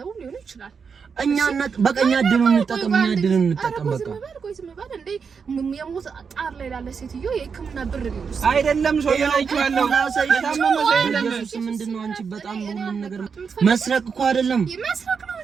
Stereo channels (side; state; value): left; quieter; 5.9 dB